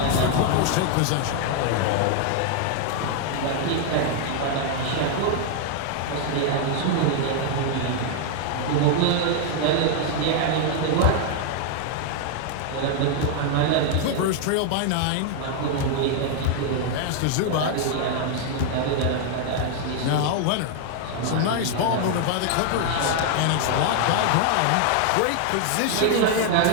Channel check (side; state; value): both; different; correlation 0.00